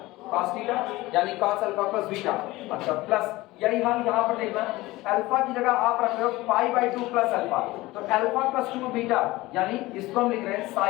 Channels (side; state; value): right; quieter; 19.2 dB